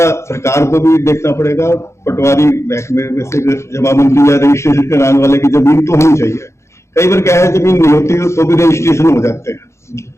सरकार को भी देखना पड़ेगा। पटवारी महकमे में से जमाबंदी या रजिस्ट्रेशन कराने वाले की जमीन तो होनी चाहिए। कई बार क्या है, जमीन नहीं होती तो भी रजिस्ट्रेशन हो जाते हैं।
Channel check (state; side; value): late; right; 0.13 ms